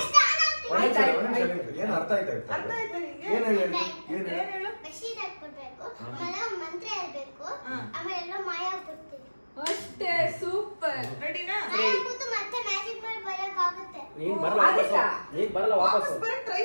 ಏನ್ ಅರ್ಥ ಆಯ್ತಾ? ಅರ್ಥ ಆಯ್ತಾ ನಿಂಗೆ? ಏನ್ ಹೇಳು? ಬೆಡ್ಶೀಟ್ ಹಾಕ್ಬಿಡ್ಬೇಕು, ಆಮೇಲೆ ಮಂತ್ರ ಹೇಳ್ಬೇಕು, ಆಮೇಲೆ ಎಲ್ಲ ಮಾಯ ಆಗ್ಬಿಡ್ತೀವಿ. ಅಷ್ಟೇ. ಸೂಪರ್. ರೆಡಿನಾ? ಕೂತು ಮತ್ತೆ ಮ್ಯಾಜಿಕ್ ಮಾಡಿ ಬರಕ್ಕಾಗುತ್ತೆ. ನೀನ್ ಬರಲ್ಲ ವಾಪಸ್ ಬರಕ್ ಟ್ರೈ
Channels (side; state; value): both; inverted; correlation -1.00